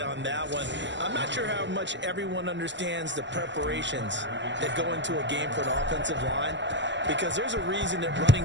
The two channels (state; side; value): late; left; 0.53 ms